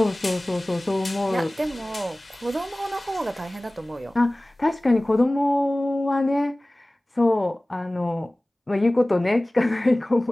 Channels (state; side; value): normal; both; correlation 0.98